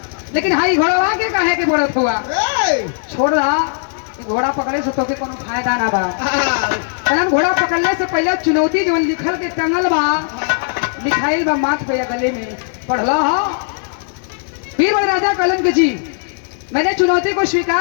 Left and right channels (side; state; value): right; silent; digital silence